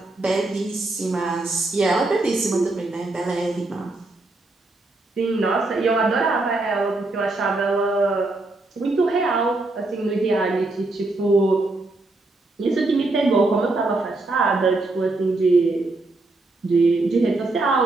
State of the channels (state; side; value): quieter; left; 3.1 dB